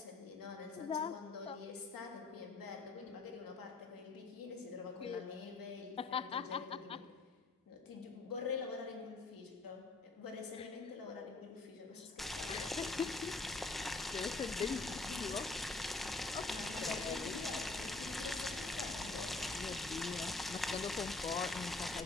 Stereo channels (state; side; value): quieter; right; 3.4 dB